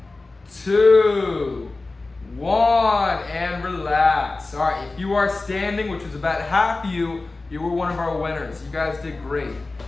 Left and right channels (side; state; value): right; quieter; 3.4 dB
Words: 2, 1, and relax. All right, if you are standing, which is about half of you, you were one of our winners. You guys did great.